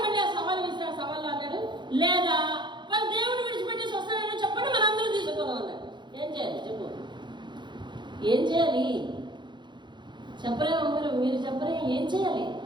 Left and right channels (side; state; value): left; late; 0.22 ms